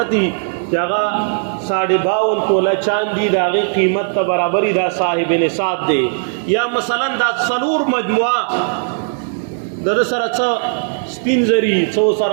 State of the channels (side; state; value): left; silent; 68 dB below the other